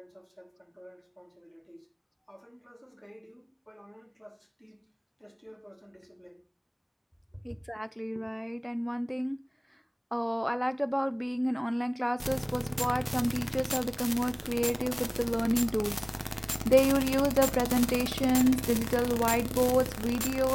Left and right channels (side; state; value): both; identical; correlation 1.00